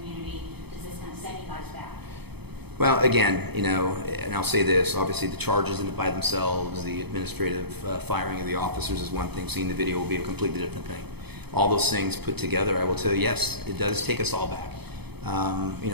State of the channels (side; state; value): left; late; 0.98 ms